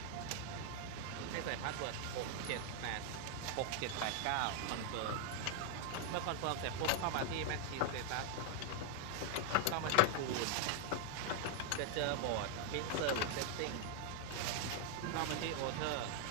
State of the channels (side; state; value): both; different; correlation 0.00